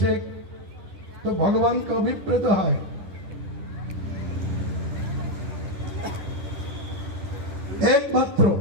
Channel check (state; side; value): late; left; 10 ms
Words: तो भगवान का अभिप्रेत है। एकमात्र